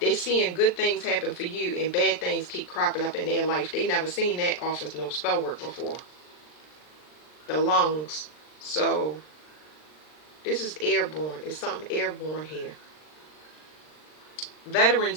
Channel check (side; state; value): right; late; 39 ms